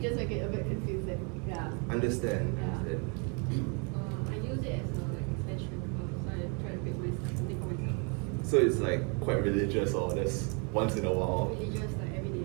make it a bit confusing. Yeah. Understand. I use it as a extension, so I try to pick something for myself. So it's like quite religious or just once in a while? Religious, like every day.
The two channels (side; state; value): left; quieter; 35.5 dB